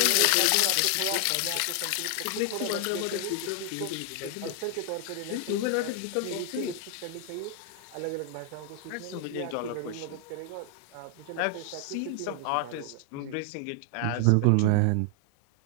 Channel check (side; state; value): both; different; correlation 0.00